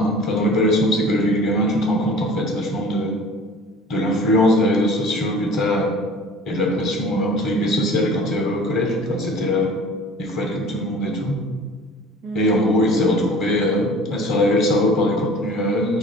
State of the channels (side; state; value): both; normal; correlation 0.44